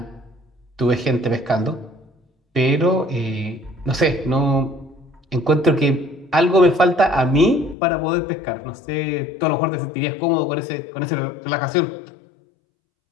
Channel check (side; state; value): right; drops out; at 7.8 s